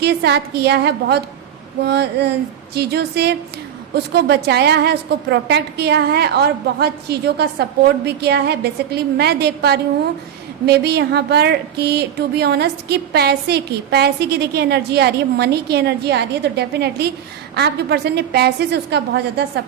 साथ किया है, बहुत चीज़ों से उसको बचाया है, उसको प्रोटेक्ट किया है और बहुत चीज़ों का सपोर्ट भी किया है। बेसिकली मैं देख पा रही हूँ मे बी यहाँ पर कि टू बी ऑनेस्ट कि पैसे की देखिए एनर्जी आ रही है, मनी की एनर्जी आ रही है। तो डेफिनेटली आपके पर्सन ने पैसे से उसका बहुत ज़्यादा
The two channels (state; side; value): quieter; left; 9.6 dB